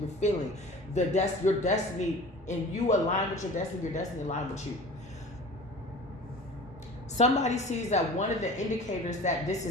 feeling. Your destiny, and you align with your destiny align with you. Somebody sees that one of the indicators that this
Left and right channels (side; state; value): both; normal; correlation 0.41